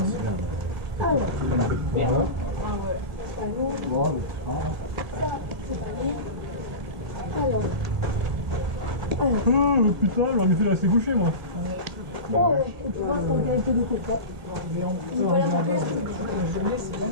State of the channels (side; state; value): left; late; 1.6 ms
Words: Alors. Merde. Ah ouais. C'est pas lourd. Ça, c'est pas lourd. Alors. Oh putain, j'aurais mieux fait de rester couché moi. Oh ouais, et tu vois, c'est en qualité de coca. Il va la remplir.